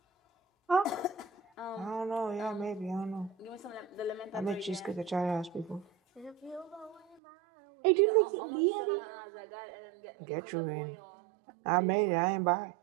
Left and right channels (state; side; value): drops out; left; at 7.2 s